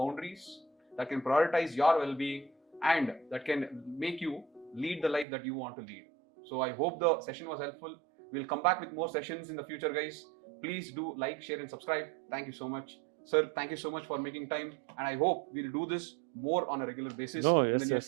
that can prioritize your well-being, and that can make you lead the life that you want to lead. So I hope the session was helpful. We'll come back with more sessions in the future, guys. Please do like, share and subscribe. Thank you so much. Sir, thank you so much for making time, and I hope we'll do this more on a regular basis in the near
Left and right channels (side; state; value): left; drops out; at 5.2 s